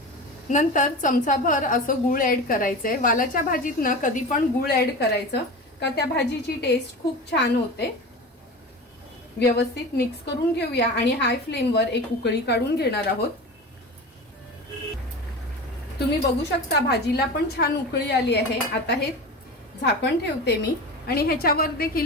नंतर चमचाभर असं गूळ ऍड करायचंय। वालाच्या भाजीत ना कधी पण गूळ ऍड करायचं का त्या भाजीची टेस्ट खूप छान होते। व्यवस्थित मिक्स करून घेऊया आणि हाय फ्लेमवर एक उकळी काढून घेणार आहोत। तुम्ही बघू शकता भाजीला पण छान उकळी आली आहे। आता हे झाकण ठेवते मी आणि ह्याच्यावर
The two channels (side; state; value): both; normal; correlation 0.30